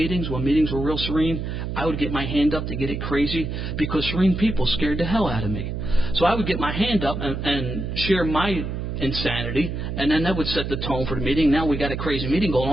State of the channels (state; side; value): noise; right; hum, 4 dB below the sound